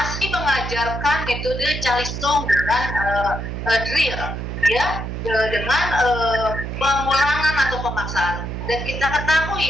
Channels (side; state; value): right; noise; hum, 5 dB below the sound